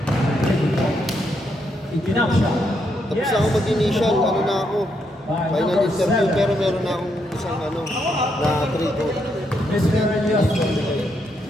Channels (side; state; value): both; normal; correlation 0.78